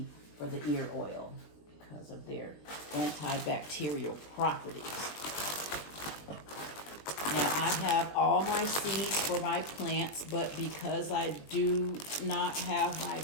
for the ear oil because of their antibacterial properties. Now I have all my seeds for my plants, but because I do not have my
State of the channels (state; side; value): late; right; 20 ms